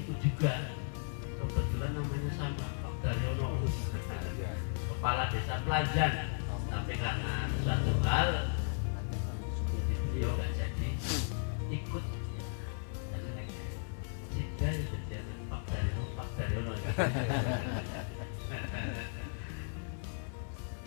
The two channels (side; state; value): right; silent; 54 dB below the other